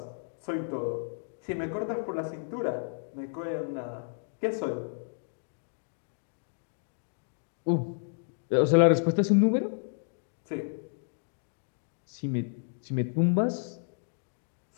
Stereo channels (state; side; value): silent; right; digital silence